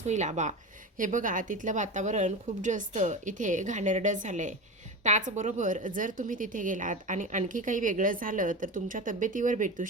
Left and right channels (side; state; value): both; normal; correlation 0.25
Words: होईल आबा. हे बघा तिथलं वातावरण खूप जास्त इथे घाणेरडं झालं आहे. त्याचबरोबर जर तुम्ही तिथे गेलात आणि आणखी काही वेगळं झालं तर तुमच्या तब्येतीवर भेटू